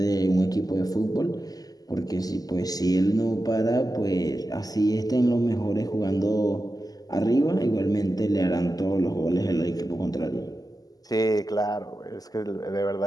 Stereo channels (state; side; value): late; right; 0.18 ms